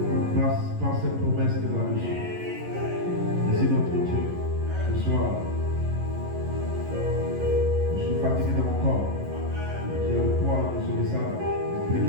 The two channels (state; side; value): late; left; 11 ms